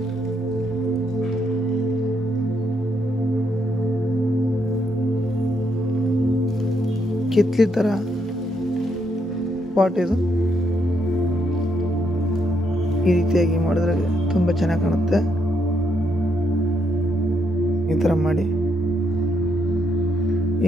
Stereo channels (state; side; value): normal; both; correlation 0.76